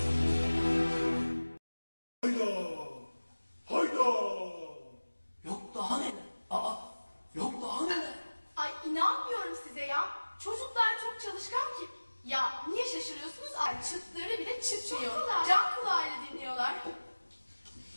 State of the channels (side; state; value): both; inverted; correlation -1.00